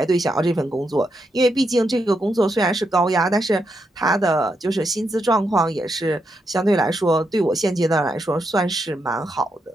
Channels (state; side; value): normal; both; correlation 0.82